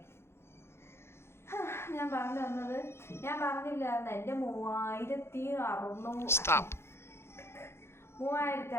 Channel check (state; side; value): late; right; 0.12 ms